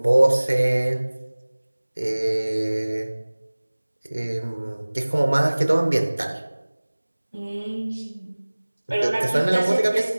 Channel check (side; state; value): both; inverted; correlation -1.00